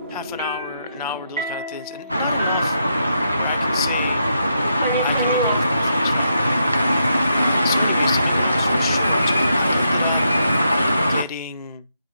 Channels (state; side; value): inverted; both; correlation -0.79